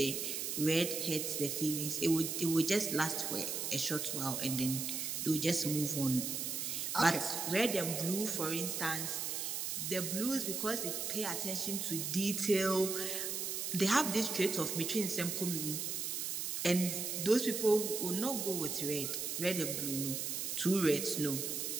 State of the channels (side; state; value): right; noise; hiss, 2 dB below the sound